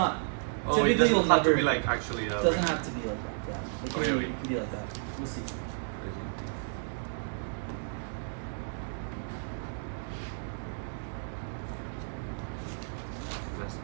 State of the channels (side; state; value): left; silent; digital silence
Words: Oh, it typically doesn't you'll have to never. be like actually. It doesn't have to be like that. Yeah. It can, Okay, be, okay. it can be like that. We'll see.